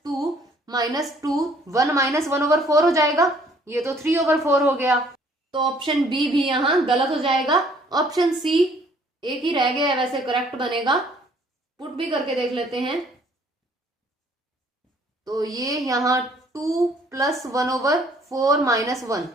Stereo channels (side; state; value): both; normal; correlation 0.60